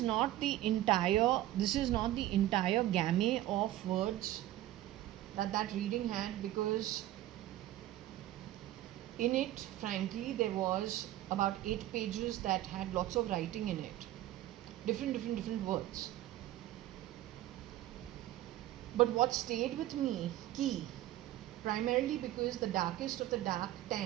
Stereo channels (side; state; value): left; quieter; 14.4 dB